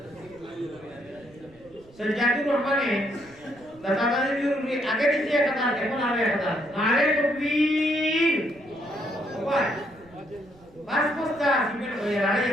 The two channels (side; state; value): right; noise; rumble, 26 dB below the sound